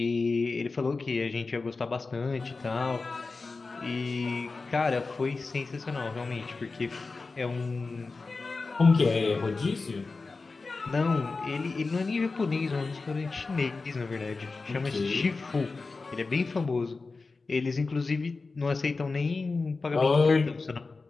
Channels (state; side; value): quieter; right; 3.9 dB